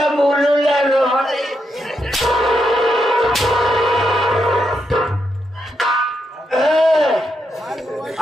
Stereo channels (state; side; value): normal; both; correlation 0.82